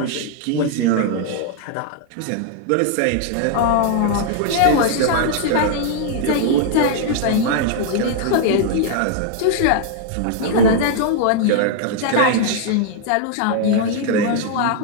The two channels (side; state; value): both; different; correlation 0.00